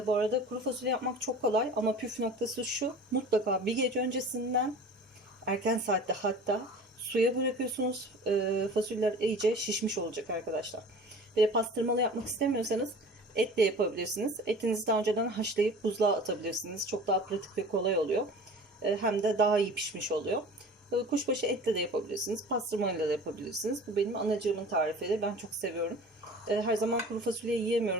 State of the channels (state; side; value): normal; both; correlation 0.41